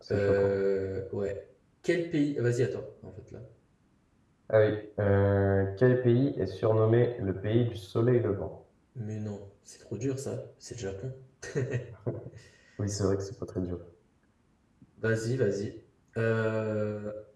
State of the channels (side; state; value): both; identical; correlation 1.00